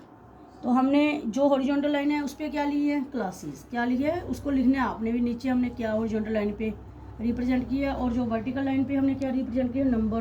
तो हमने जो हॉरिजॉन्टल लाइन है उस पर क्या ली है, क्लासेस। क्या ली है उसको लिखना है आपने भी नीचे। हमने क्या हॉरिजॉन्टल लाइन पे रिप्रेजेंट किया, और जो वर्टिकल लाइन पे हमने क्या रिप्रेजेंट किया,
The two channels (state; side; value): identical; both; correlation 1.00